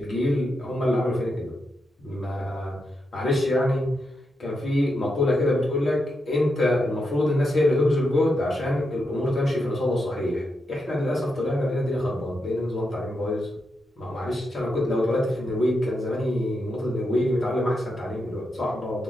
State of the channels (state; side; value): normal; both; correlation 0.85